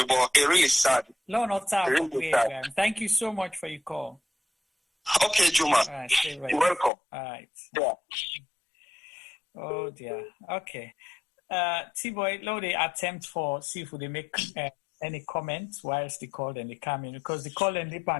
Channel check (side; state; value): right; drops out; at 6.9 s